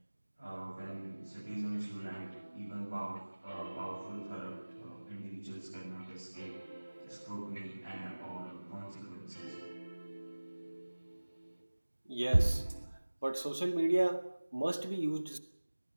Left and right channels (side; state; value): both; inverted; correlation -1.00